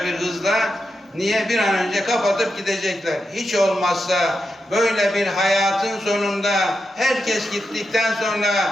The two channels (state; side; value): normal; both; correlation 0.87